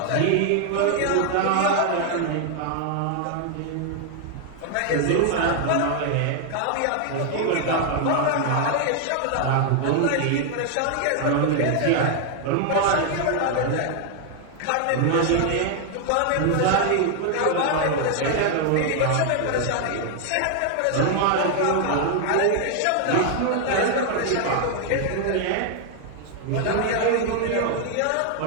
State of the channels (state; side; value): different; both; correlation 0.00